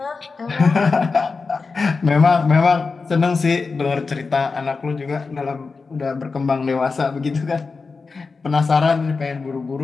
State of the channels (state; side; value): quieter; right; 4.4 dB